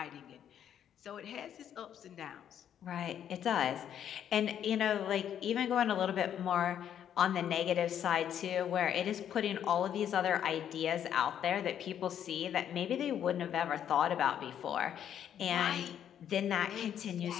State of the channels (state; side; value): quieter; right; 9.6 dB